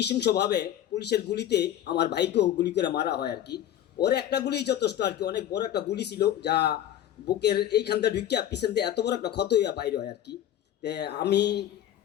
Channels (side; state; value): right; quieter; 11.4 dB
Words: পুলিশের গুলিতে আমার ভাইকেও গুলি করে মারা হয় আর কি। ওর একটা গুলি যথেষ্ট আর কি, অনেক বড় একটা গুলি ছিল যা বুকের এইখানটা ঢুকিয়া পিছন দিয়ে এত বড় একটা ক্ষত হইয়া বাইরে হয় আর কি। আমি